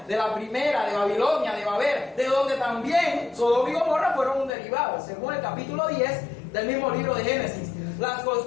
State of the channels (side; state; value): right; drops out; at 4.5 s